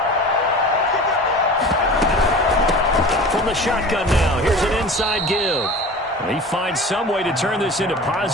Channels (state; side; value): normal; both; correlation 0.37